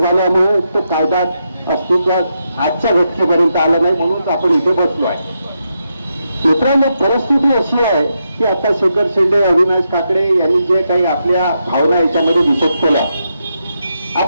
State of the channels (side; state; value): both; inverted; correlation -0.83